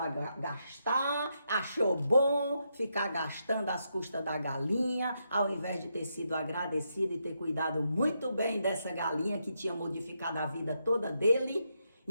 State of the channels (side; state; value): both; inverted; correlation -0.81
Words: gastar, achou bom ficar gastando às custas da galinha, ao invés de ter sido agradecido e ter cuidado muito bem dessa galinha que tinha modificado a vida toda dele.